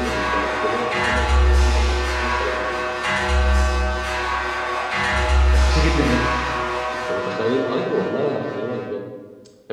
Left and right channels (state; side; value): identical; both; correlation 1.00